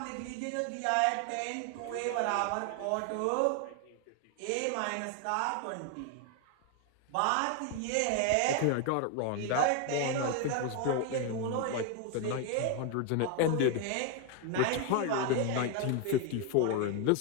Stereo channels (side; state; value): both; different; correlation 0.01